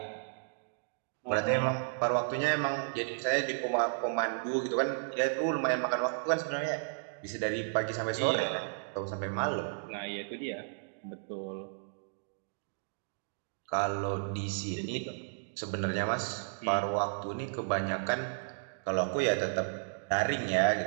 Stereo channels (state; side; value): silent; left; digital silence